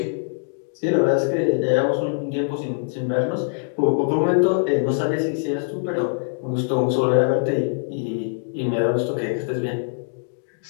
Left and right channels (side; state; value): right; silent; digital silence